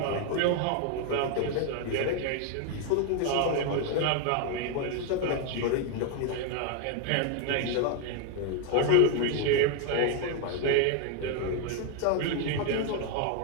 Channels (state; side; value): different; both; correlation 0.01